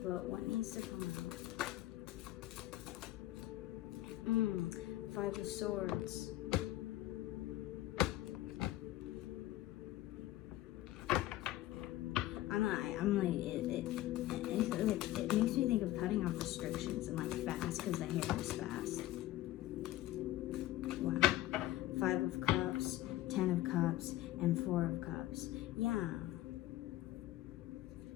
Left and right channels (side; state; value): right; quieter; 15.4 dB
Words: But what needs to come out? 5 of Swords. It makes me think of cutting off restrictions and like fast, because the hair is fast. Wow. 5 of Cups, 10 of Cups, and 4 of Cups. Yeah.